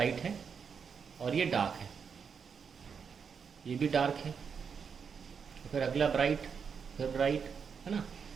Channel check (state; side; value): quieter; left; 6.4 dB